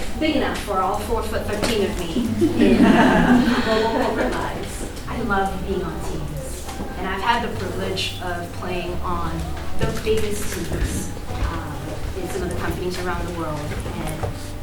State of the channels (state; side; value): identical; both; correlation 1.00